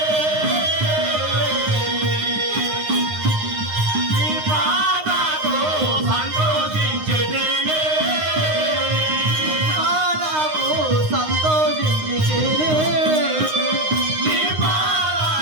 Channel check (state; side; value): late; left; 9.7 ms